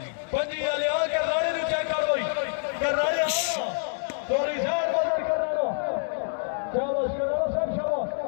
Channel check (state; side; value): silent; right; digital silence